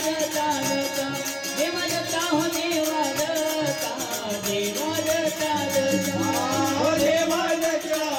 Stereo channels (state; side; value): identical; both; correlation 1.00